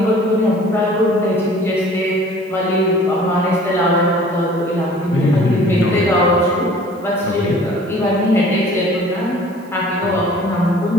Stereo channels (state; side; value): noise; right; hiss, 29 dB below the sound